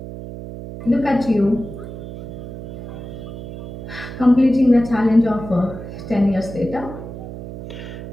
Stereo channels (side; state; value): right; noise; hum, 10 dB below the sound